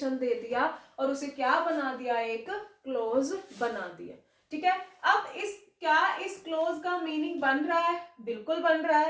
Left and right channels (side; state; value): both; identical; correlation 1.00